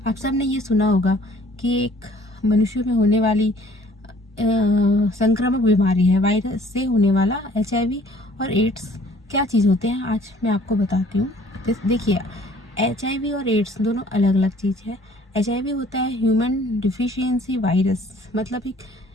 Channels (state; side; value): normal; both; correlation 0.56